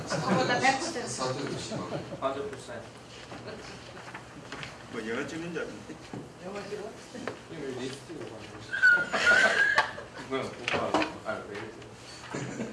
저보다 100%. 사태도 심하고. 아주 불쌍해. 뭐 영화 찍는 줄 알았는데. 영화 찍어? 이거 리스트가 뭐야? 오빠 왜 이렇게?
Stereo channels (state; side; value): identical; both; correlation 1.00